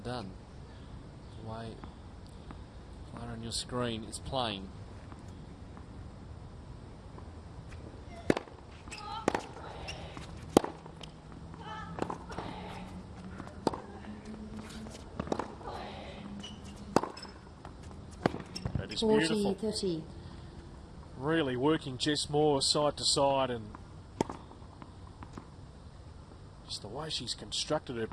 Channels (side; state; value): both; identical; correlation 1.00